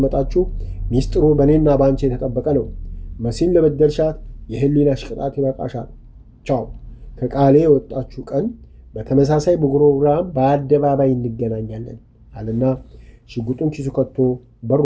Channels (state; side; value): identical; both; correlation 1.00